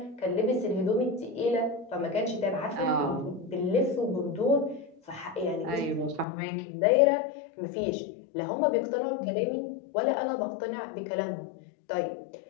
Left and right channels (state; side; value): drops out; right; at 6.2 s